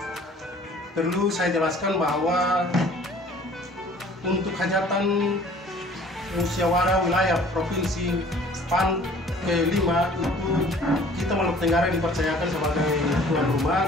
perlu saya jelaskan bahwa untuk hajatan musyawarah wilayah Provinsi PAN ke-5 itu kita Maluku Tenggara dipercayakan sebagai tuan rumah,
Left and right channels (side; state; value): both; normal; correlation 0.51